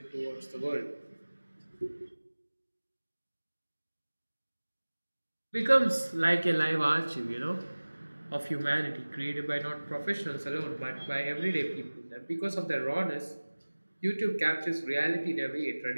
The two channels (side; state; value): both; inverted; correlation -1.00